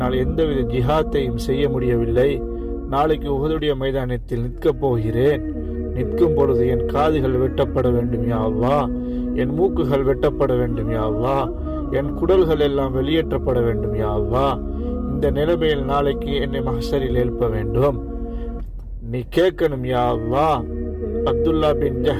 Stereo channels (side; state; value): both; identical; correlation 1.00